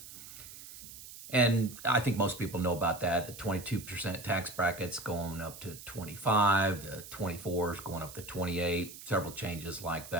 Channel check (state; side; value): noise; right; hiss, 14 dB below the sound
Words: And I think most people know about that. The 22% tax bracket's going up to 25, the 24 is going up to 28, several changes like